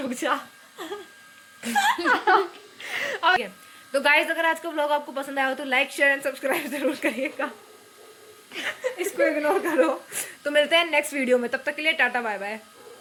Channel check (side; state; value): both; identical; correlation 1.00